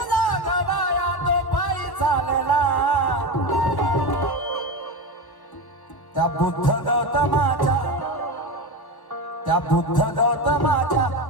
जागवाया तो पायी चालला. त्या बुद्ध गौतमाच्या, त्या बुद्ध गौतमाच्या,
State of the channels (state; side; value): late; right; 1.2 ms